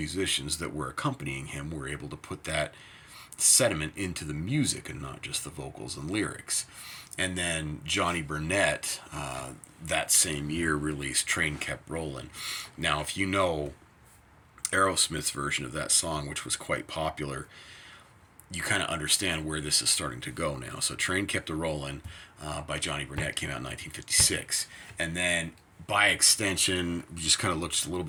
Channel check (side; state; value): both; identical; correlation 1.00